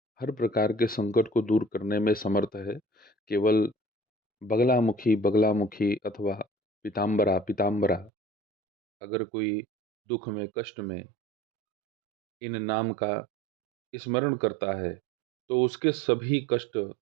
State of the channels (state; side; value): drops out; left; at 8.1 s